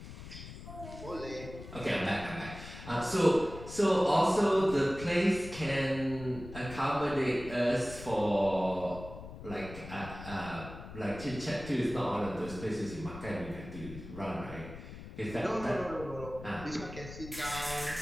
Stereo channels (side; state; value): left; noise; rumble, 13 dB below the sound